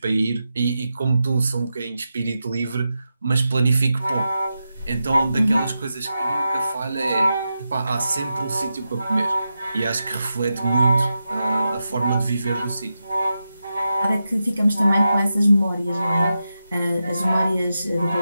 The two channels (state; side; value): inverted; both; correlation -0.89